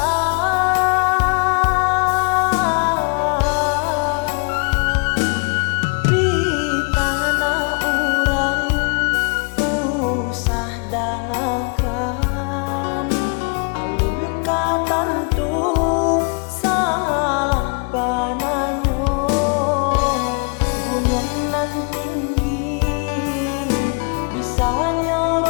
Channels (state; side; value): quieter; right; 35.3 dB